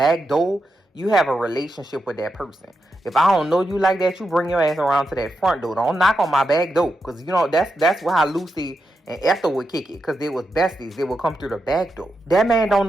door, you have a relationship with that person. If I don't know you like that, you bring your ass around to that front door. Don't knock on my back door, because that's how Lucy and Ethel would kick it, because they was besties. They would come through the back door. That man don't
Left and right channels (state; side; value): normal; both; correlation 0.86